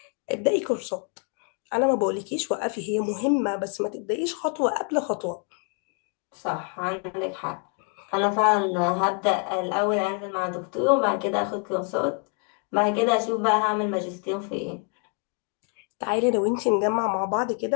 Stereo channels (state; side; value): quieter; right; 39.8 dB